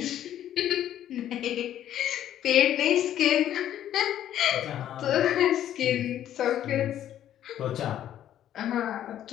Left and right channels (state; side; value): quieter; right; 11.3 dB